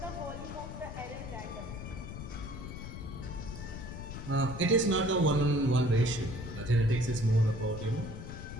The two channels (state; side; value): noise; left; rumble, 9 dB below the sound